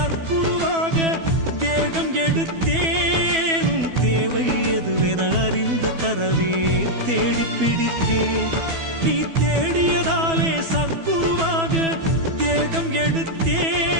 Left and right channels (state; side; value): late; left; 12 ms